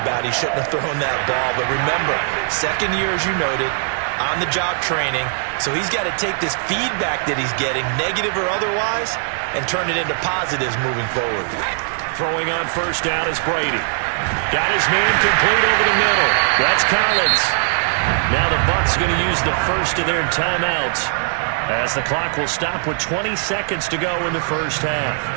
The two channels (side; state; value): left; silent; 66 dB below the other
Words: he shouldn't have thrown that ball. But remember, second year, as you noted, on-the-job training, so he's got to take this feedback that he's getting, negative or otherwise, and turn it into positives moving forward. Throwing on first down is Brady. Got his man complete over the middle. That's Collins. Now the Bucks going to use the first of their timeouts as the clock will stop with 20 seconds to go in the first half.